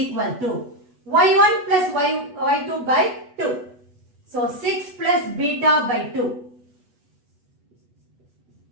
to y1 plus y2 by 2. So, 6 plus beta by 2.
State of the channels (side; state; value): left; late; 8.1 ms